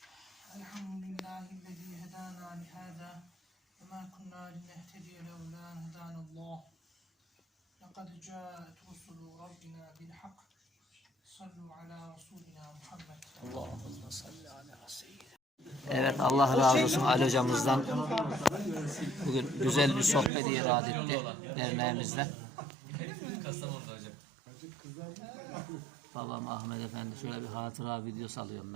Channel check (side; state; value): left; drops out; at 20.3 s